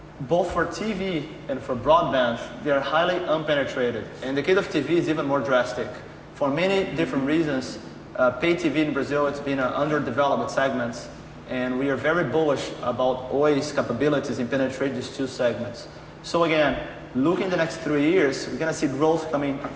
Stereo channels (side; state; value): both; identical; correlation 1.00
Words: both for TV and for broadband, they are highly unpenetrated. And the case of TV is even more drastic. For many different reasons, pay TV in Brazil, it's been an underdeveloped segment. And we are very bullish about Oi's capabilities in penetrating these 2 segments. So again, looking the next 3 years, we're going to see growth coming